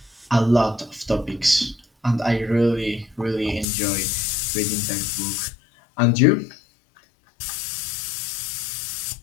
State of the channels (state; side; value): drops out; right; at 3.7 s